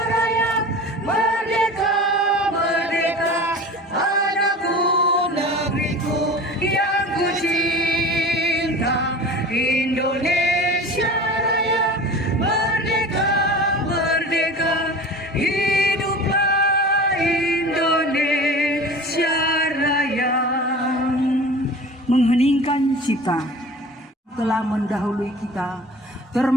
Raya, merdeka, merdeka, Cipta telah mendahului kita,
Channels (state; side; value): normal; both; correlation 0.38